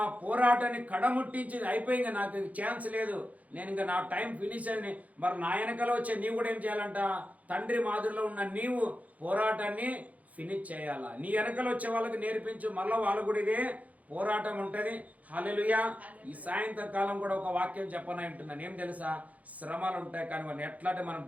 పోరాటాన్ని కడముట్టించి అయిపోయింది, నాకు ఛాన్స్ లేదు, నేను ఇంకా నా టైం ఫినిష్ అని. మరి నా వెనకలో వచ్చే నీవు కూడా ఏం చేయాలంట? తండ్రి మాదిరిలో ఉన్న నీవు పోరాటాన్ని ఫినిష్ చేయాలా. నీ వెనకలో వచ్చే వాళ్ళకి నేర్పించు, మళ్ళీ వాళ్ళు కూడా ఇదే పోరాటం ఉంటుంది. హల్లెలూయా. ఈ సాయంత్రకాలం కూడా ఒక వాక్యం చెప్పనై ఉంటున్నాను. ఏం తెలుసా? శ్రమలు ఉంటాయి, కానీ వాళ్ళు ఎట్లాంటి మనం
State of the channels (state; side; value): late; left; 0.072 ms